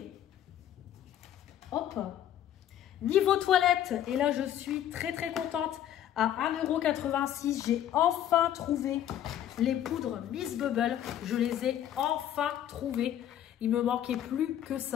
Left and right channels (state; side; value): quieter; right; 11.0 dB